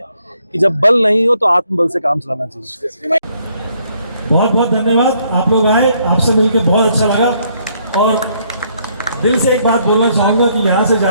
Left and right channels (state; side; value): inverted; both; correlation -0.69